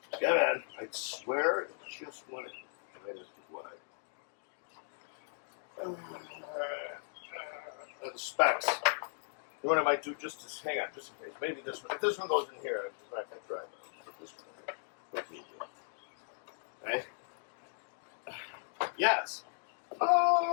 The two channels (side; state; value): right; silent; digital silence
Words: Yeah, man. I swear it just went in. Right as to wide. The specs. What I might do just to hang on, just in case. Maybe this one. If this one goes in here, I'm just not going to try it. I'll put this one in here. Okay. Yes.